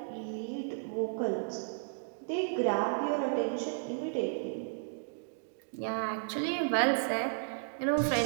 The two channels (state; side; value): silent; left; digital silence